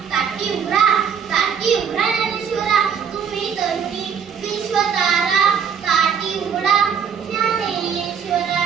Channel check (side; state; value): left; quieter; 7.2 dB